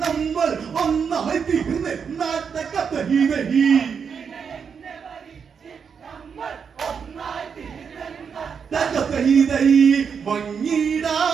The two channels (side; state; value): left; quieter; 6.5 dB